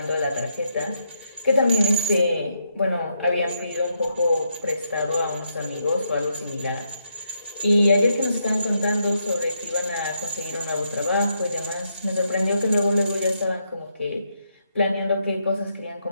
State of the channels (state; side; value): inverted; both; correlation -0.80